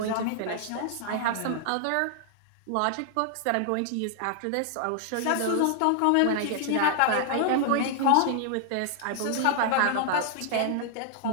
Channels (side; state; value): both; different; correlation -0.01